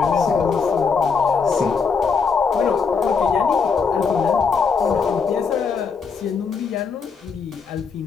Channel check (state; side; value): quieter; right; 5.5 dB